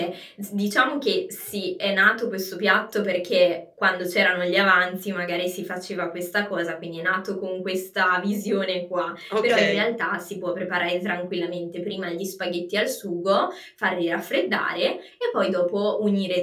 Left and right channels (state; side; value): identical; both; correlation 1.00